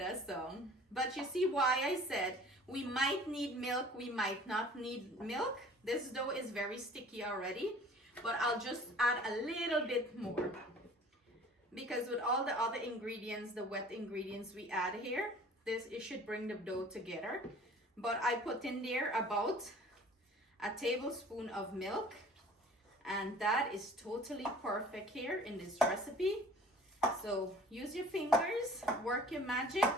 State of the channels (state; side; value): normal; both; correlation 0.48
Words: song. But you see why I said we might need milk, we might not need milk. This dough is very sticky already, but I'll just add a little bit more. Because with all the other ingredients, the wet ingredients we add here, it should bring the dough together. But I put in there about a tablespoon of milk, and that is totally perfect here in this recipe. So use your fingers, work your magic,